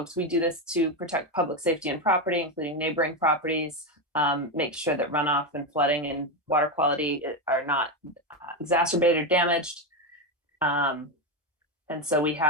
we do this to protect public safety and property, including neighboring properties, make sure that runoff and flooding and water quality are not exacerbated or damaged. And so we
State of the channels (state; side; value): normal; both; correlation 0.11